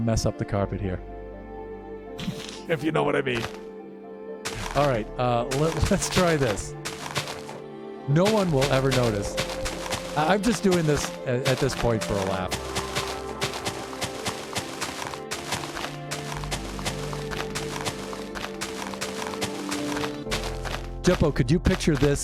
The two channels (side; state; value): both; identical; correlation 1.00